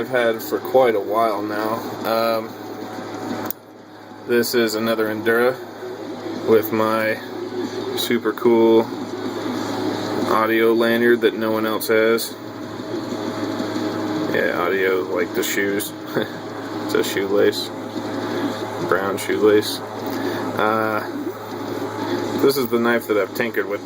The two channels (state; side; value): identical; both; correlation 1.00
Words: had for quite a while now. This is another Endura with my super cool audio lanyard that no one else has. Yeah, audio like the shoes. It's a shoelace, brown shoelace. This is the knife that I've tinkered with